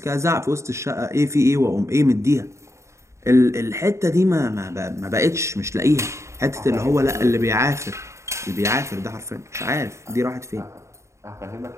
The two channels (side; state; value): left; late; 0.14 ms